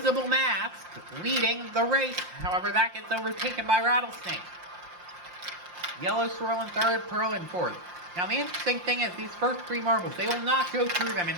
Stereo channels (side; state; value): left; late; 5.7 ms